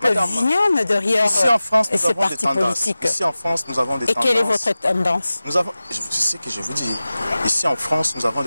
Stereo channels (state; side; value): inverted; both; correlation -0.96